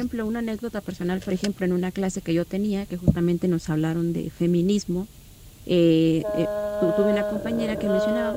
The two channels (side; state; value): both; identical; correlation 1.00